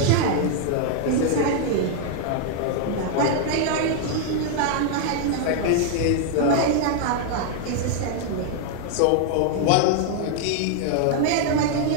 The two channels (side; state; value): both; different; correlation 0.00